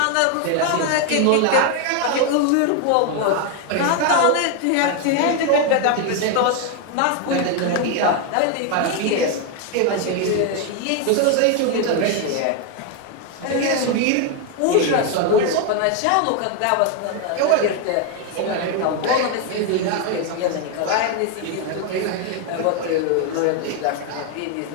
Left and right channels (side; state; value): both; different; correlation 0.01